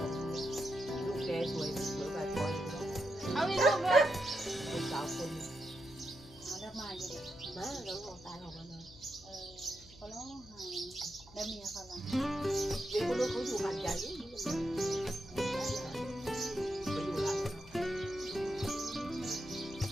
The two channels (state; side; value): noise; left; hum, 21 dB below the sound